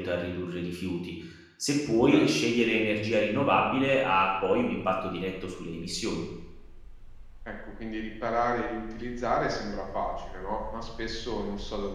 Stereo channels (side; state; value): both; identical; correlation 1.00